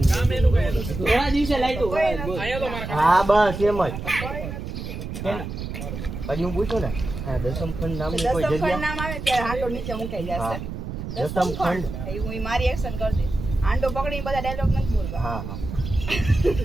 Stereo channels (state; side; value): noise; right; rumble, 7 dB below the sound